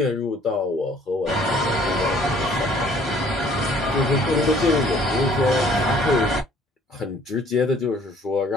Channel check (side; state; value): both; normal; correlation 0.57